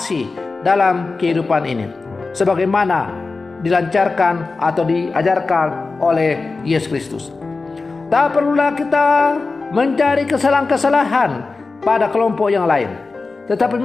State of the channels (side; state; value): right; quieter; 3.9 dB